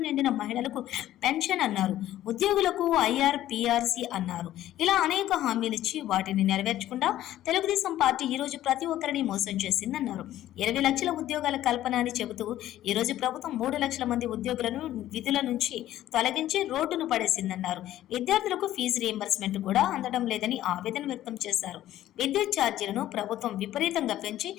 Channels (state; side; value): quieter; right; 13.4 dB